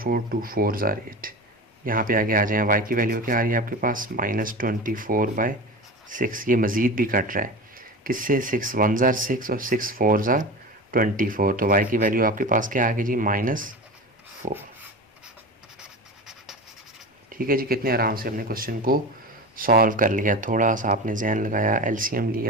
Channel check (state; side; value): normal; both; correlation 0.28